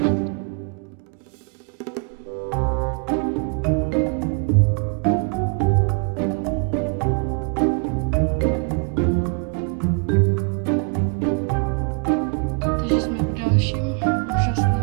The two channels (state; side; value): quieter; left; 37.3 dB